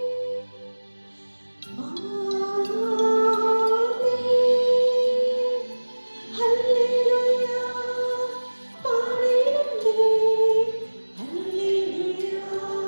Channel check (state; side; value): inverted; both; correlation -1.00